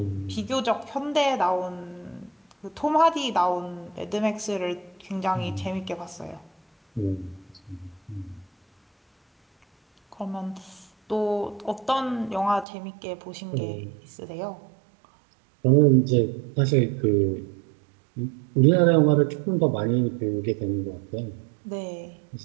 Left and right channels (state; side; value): drops out; left; at 12.7 s